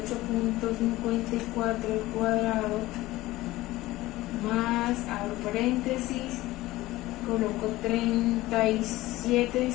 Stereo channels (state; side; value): quieter; right; 17.8 dB